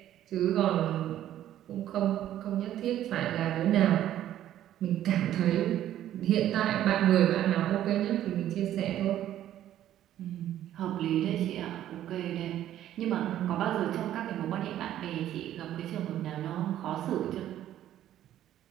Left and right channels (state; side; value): quieter; left; 12.1 dB